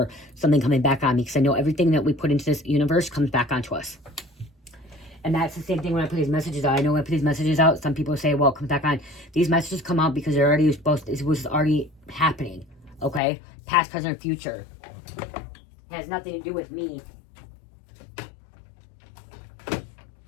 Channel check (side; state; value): right; drops out; at 13.2 s